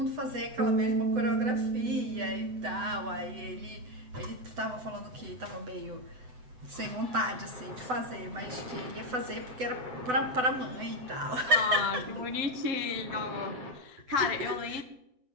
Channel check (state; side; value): late; left; 7.9 ms